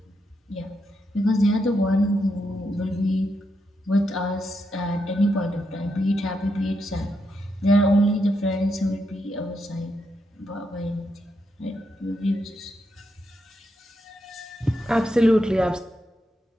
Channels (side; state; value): both; normal; correlation 0.82